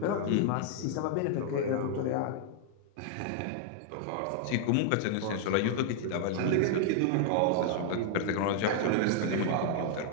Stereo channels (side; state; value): both; different; correlation -0.01